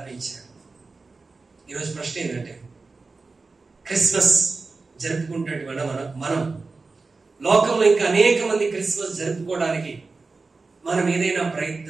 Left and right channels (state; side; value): quieter; left; 3.9 dB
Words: ఈరోజు ప్రశ్న ఏంటంటే, క్రిస్మస్ జరుపుకుంటున్నటువంటి మనం లోకంలో ఇంకా అనేక మంది క్రిస్మస్ జరుపుకోవడానికి మనం ఏదైనా